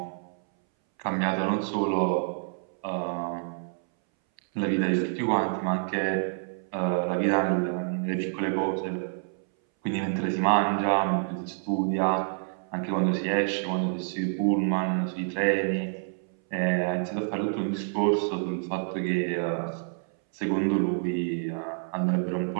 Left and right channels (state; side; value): silent; left; 59 dB below the other